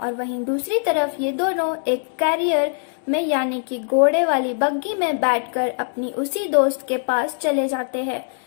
वहीं दूसरी तरफ ये दोनों एक कैरियर में, यानी कि घोड़े वाली बग्गी में बैठकर अपनी उसी दोस्त के पास चले जाते हैं,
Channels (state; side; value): silent; right; 64 dB below the other